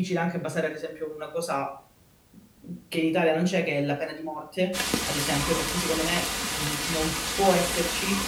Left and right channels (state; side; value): identical; both; correlation 1.00